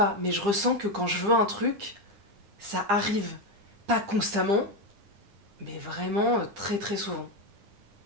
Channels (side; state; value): left; late; 9.9 ms